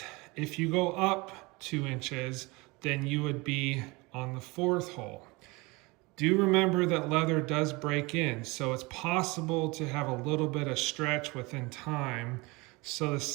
If you go up 2 inches, then you would be on the 4th hole. Do remember that leather does break in, so it's possible to have a little bit of stretch within time. So the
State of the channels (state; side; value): quieter; left; 25.0 dB